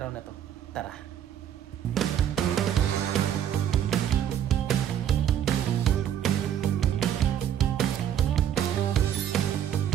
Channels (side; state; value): left; quieter; 9.9 dB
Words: na to. Tara!